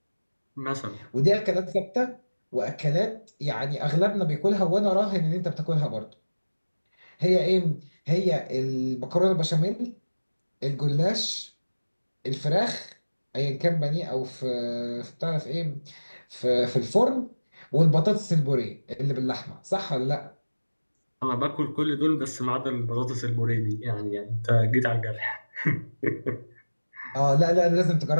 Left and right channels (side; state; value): both; inverted; correlation -1.00